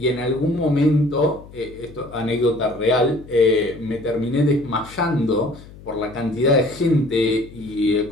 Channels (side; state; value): left; noise; hum, 19 dB below the sound